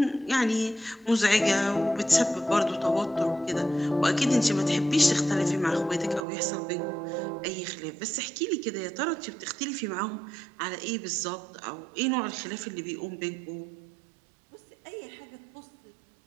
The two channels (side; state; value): left; drops out; at 6.2 s